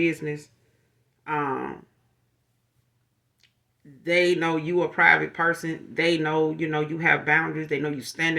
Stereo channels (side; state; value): both; identical; correlation 1.00